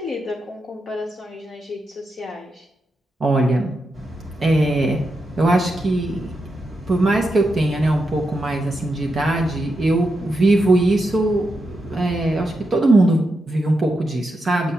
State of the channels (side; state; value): both; normal; correlation 0.86